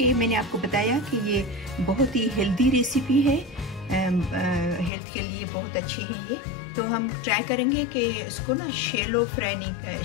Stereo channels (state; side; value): drops out; right; at 4.9 s